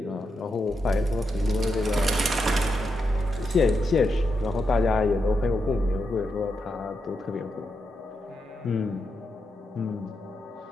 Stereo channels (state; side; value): normal; both; correlation 0.85